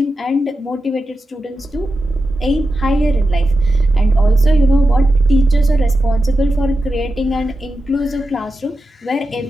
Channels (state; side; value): normal; both; correlation 0.90